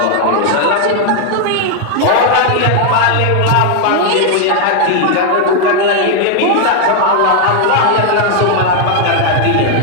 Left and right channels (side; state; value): both; different; correlation 0.00